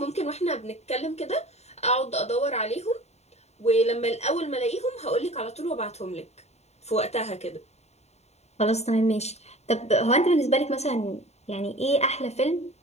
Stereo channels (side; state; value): right; late; 0.32 ms